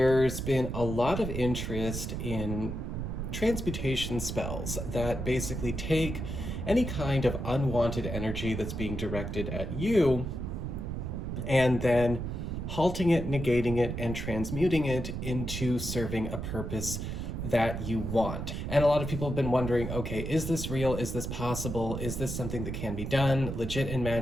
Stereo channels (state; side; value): noise; right; rumble, 4 dB below the sound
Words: been a lot of interest in transmutation spells that basically take any kind of unwanted energy that's being directed at you and then halting it, negating it, and transmuting it into serving a purpose that you want. And a lot of people have been wondering, okay, is this real? Is this possible? Is this something that can be done legit in